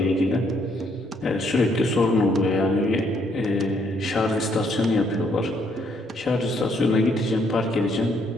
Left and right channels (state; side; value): normal; both; correlation 0.70